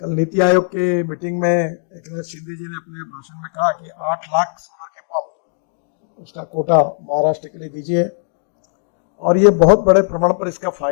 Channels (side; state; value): right; silent; digital silence